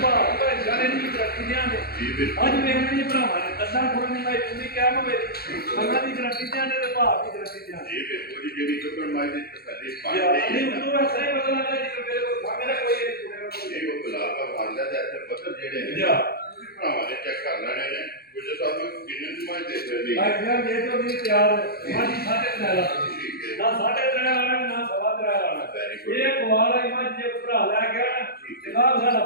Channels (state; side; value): late; right; 0.45 ms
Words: ਭਾਅ ਭਾਈ ਜਾਨੇ ਨਹੀਂ ਕਰਤੀ ਦਿਆਂਗੇ ਜੀ ਬਿਲਕੁਲ। ਅੱਜ ਵੇਖਣ ਜੀ ਭਰਾਵਾਂ ਨੇ ਦੱਸਾਂ ਕੋਲ ਨਹੀਂ ਭਾਈ ਤੁਸੀਂ ਕਿਹਾ ਮਵੇ ਅੱਲਾਹ ਦੀ ਗਰੰਟੀ ਦਿਆਂਗੇ ਤੇ ਭਾਅ ਦੀ ਗਰੰਟੀ ਦਿਆਂਗੇ ਜੀ ਬਿਲਕੁਲ ਜੀ। ਜਿਹੜੀ ਚੁੱਕਣ ਮਾਈ ਦੀ ਤਸੱਲੀ ਪਾਣੀ ਯਾਰ ਹੈ ਨਹੀਂ ਨਾ, ਉਦੋਂ ਐਸਾ ਹੀ ਪਤਾ ਲੱਗਾ ਜੀ ਮੇਰੇ ਕੋਲ ਖਾਣੇ ਦਾ ਕੋਈ ਨਹੀਂ ਇਹ ਉਹ ਗੁਲਾਬ ਦਾ ਫਾਂਦਾ ਤੇ ਇੱਥੇ ਪੱਥਰ ਜਿਹੜੇ ਨੇ ਜਾ। ਤੁਸੀਂ ਭਰਾਵਾਂ ਨੇ ਚੈੱਕ ਕਰ ਲੈਣੇ ਨੇ ਗੁੱਜਰ ਸਾਹਿਬ ਕਿੰਨੇ ਦੀ ਮਾਈ ਦੇ ਸਕਦੇ ਭਾਈ ਯਾਰ ਜੇ ਤੋਂ ਨਹੀਂ ਤਿਆਰ ਮਾਜੀ ਸਾਡੇ ਤੇ ਲਾ ਠੀਕ ਹੈ। ਨਾ ਸਾਡੇ ਤੇ ਆਣਾ ਨਾ ਸਵਾ ਤੇ ਆਣਾ Very good. ਇਹ ਕੁਆਰ ਆਈ ਮੱਝ ਜੇ ਕੋਈ ਭਰਾ ਲੈ ਗਿਆ ਨਾ ਠੀਕ ਹੈ। ਜਨਾਬ ਸਾਡਾ